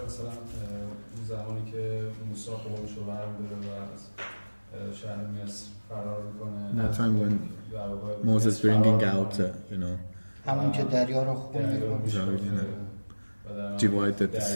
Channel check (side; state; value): both; inverted; correlation -1.00